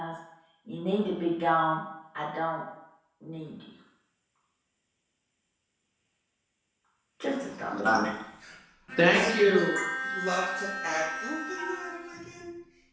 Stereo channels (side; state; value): both; identical; correlation 1.00